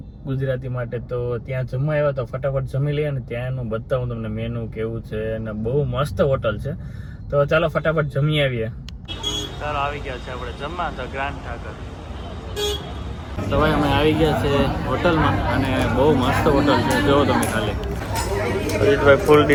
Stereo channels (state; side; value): identical; both; correlation 1.00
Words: ગુજરાતી માટે. તો ત્યાં જમવા આવ્યા તો ફટાફટ જમી લઈએ અને ત્યાંનું બતાવું તમને મેનુ કેવું છે અને બહુ મસ્ત હોટલ છે. તો ચાલો ફટાફટ જમી આવીએ. ચાલો આવી ગયા છે આપણે જમવા ધ ગ્રાન્ડ ઠાકર. તો ભાઈ અમે આવી ગયા છે હોટલમાં અને બહુ મસ્ત હોટલ છે, જોવો તમે ખાલી. ભાઈ ફૂલ